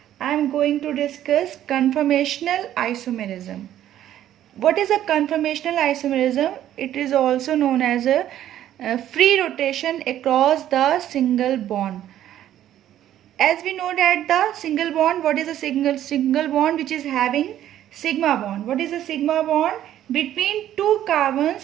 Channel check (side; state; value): left; quieter; 11.9 dB